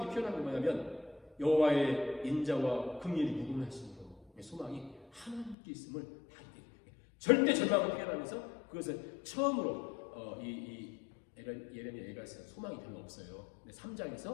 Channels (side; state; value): right; drops out; at 5.6 s